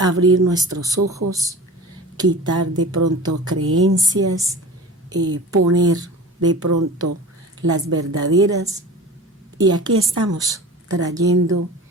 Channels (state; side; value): normal; both; correlation 0.37